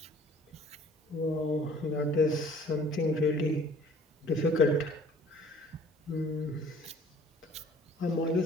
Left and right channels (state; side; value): normal; both; correlation 0.53